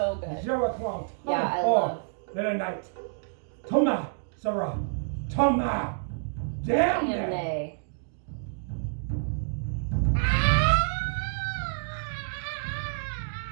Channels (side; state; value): left; silent; digital silence